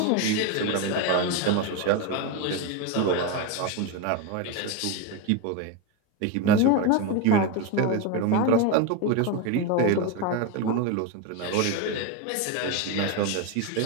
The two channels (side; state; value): both; different; correlation 0.03